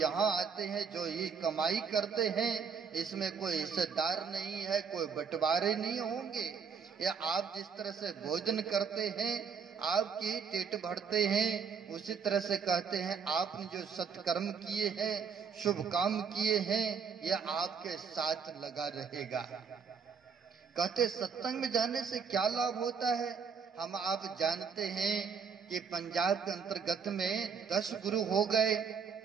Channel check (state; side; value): quieter; left; 6.2 dB